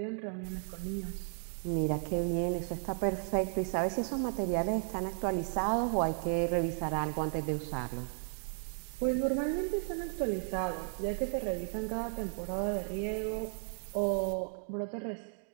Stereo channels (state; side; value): silent; left; 55 dB below the other